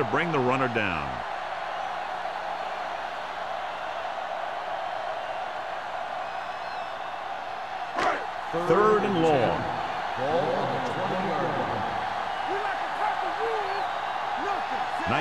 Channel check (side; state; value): both; identical; correlation 1.00